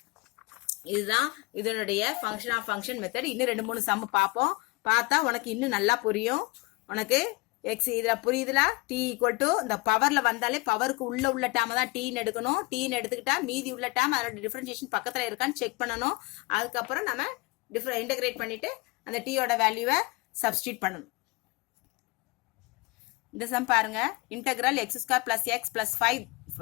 இதுதான் இதனுடைய ஃபங்க்ஷன் ஆஃப் ஃபங்க்ஷன் மெத்தட். இன்னும் 2-3 சம் பார்ப்போம். பார்த்தா உனக்கு இன்னும் நல்லா புரியும். உனக்கு எக்ஸ் இதுல புரியுதுல, t ஈக்குவல் டு இந்த பவர்ல வந்தாலே பவருக்கு உள்ள டேர்ம் தான் t ன்னு எடுக்கணும். t ன்னு எடுத்துக்கிட்டா மீதி உள்ள டேர்ம் அதோட டிஃபரன்ஷியேஷன் பக்கத்துல இருக்கான்னு செக் பண்ணணும். அதுக்கப்புறம் நம்ம இன்டகிரேட் பண்ணிட்டு அந்த t யோட வேல்யூவை சப்ஸ்டிட்யூட் பண்ணணும். இந்த சம் பாருங்க, integral x square plus X plus 5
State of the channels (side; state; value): right; quieter; 25.3 dB